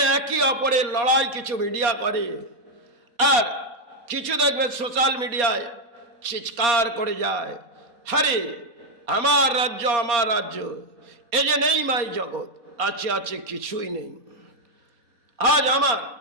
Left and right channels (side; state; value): left; late; 4.3 ms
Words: একে অপরের লড়াই কিছু মিডিয়া করে, আর কিছু দেখবে সোশ্যাল মিডিয়ায় চিৎকার করে যায়, হরে আমার রাজ্য, আমার রাজ্য, এ যে নেই মাই জগৎ, আছে আছে কিছুই নেই। আজ আমার,